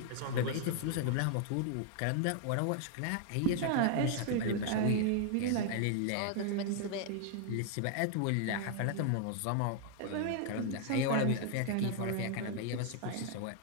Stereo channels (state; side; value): different; both; correlation 0.00